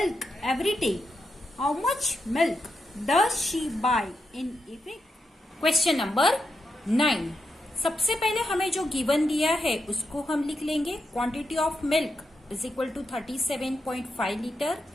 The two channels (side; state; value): both; normal; correlation 0.85